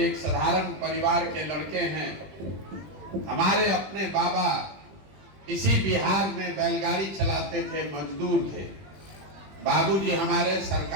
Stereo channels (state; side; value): late; left; 20 ms